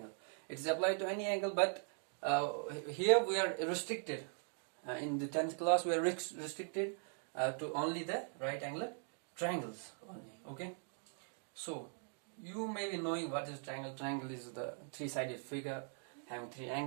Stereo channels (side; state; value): left; silent; 51 dB below the other